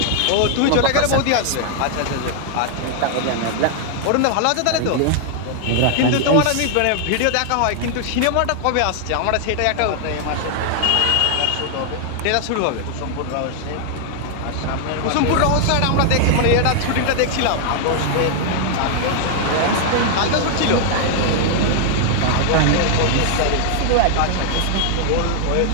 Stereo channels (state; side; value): different; both; correlation 0.00